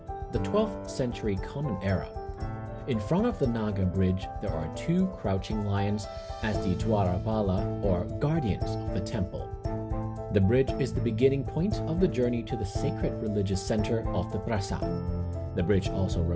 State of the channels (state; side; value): identical; both; correlation 1.00